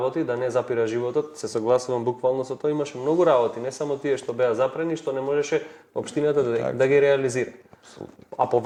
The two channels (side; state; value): both; identical; correlation 1.00